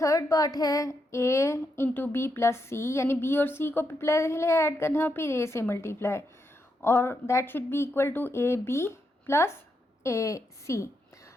थर्ड पार्ट है a into B plus C, यानी b और c को पहले ऐड करना फिर a से मल्टीप्लाई, और that should be equal to A B plus A C.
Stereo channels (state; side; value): normal; both; correlation 0.82